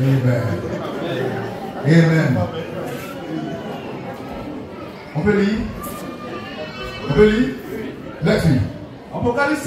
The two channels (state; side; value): identical; both; correlation 1.00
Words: Amen. On peut lire? On peut lire? Let's read. Apocalypse